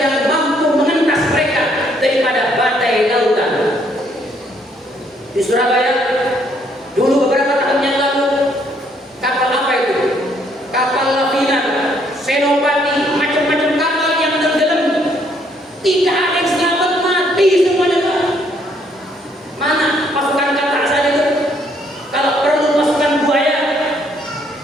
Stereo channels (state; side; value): normal; both; correlation 0.68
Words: mampu mengentas mereka daripada badai lautan. Di Surabaya dulu beberapa tahun yang lalu, kapal apa itu? Kapal Lavina, Senopati, macam-macam kapal yang tenggelam. Tidak ada yang selamat, mati semuanya, Pak. Mana pasukan katak saja itu? Kalau perlu pasukan buaya,